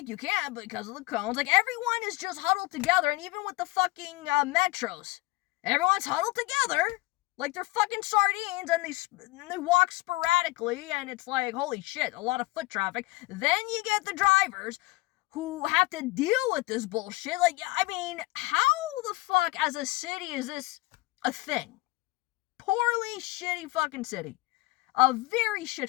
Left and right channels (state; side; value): quieter; right; 20.7 dB